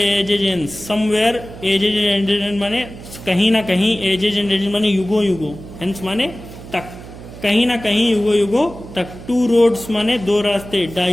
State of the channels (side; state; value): right; noise; hum, 15 dB below the sound